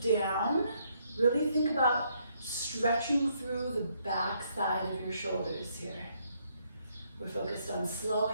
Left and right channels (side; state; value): both; inverted; correlation -0.72